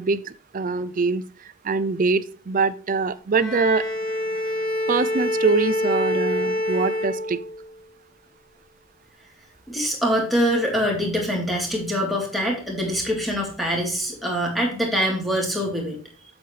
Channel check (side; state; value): both; normal; correlation 0.40